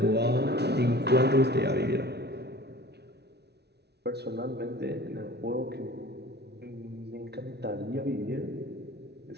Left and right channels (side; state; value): left; late; 0.49 ms